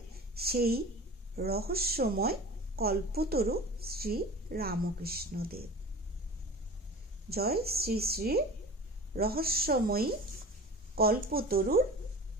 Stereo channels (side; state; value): both; normal; correlation 0.37